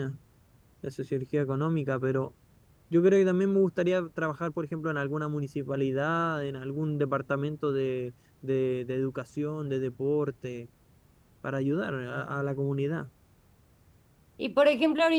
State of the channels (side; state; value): both; identical; correlation 1.00